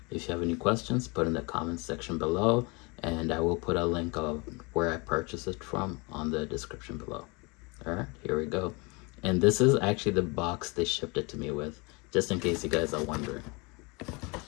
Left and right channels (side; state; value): right; quieter; 28.4 dB